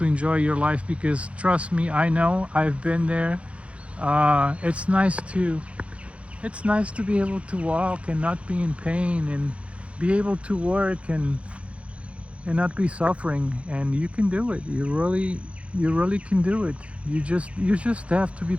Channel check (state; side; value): late; left; 0.062 ms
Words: enjoy your life, because trust me, I know, I've been there. It's nice to be able to walk and not be in pain, and be able to work and not be suffering, and you can do it. You really can do it. You just have to be